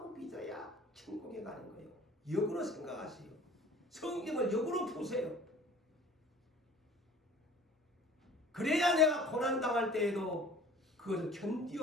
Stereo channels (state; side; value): normal; both; correlation 0.47